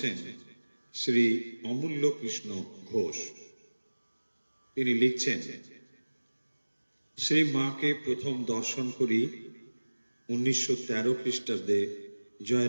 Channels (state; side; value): inverted; both; correlation -1.00